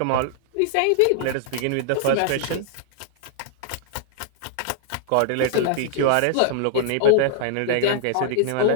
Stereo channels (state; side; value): different; both; correlation -0.01